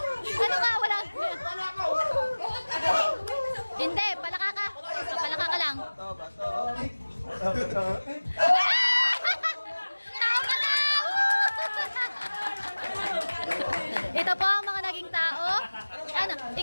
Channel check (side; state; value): both; inverted; correlation -1.00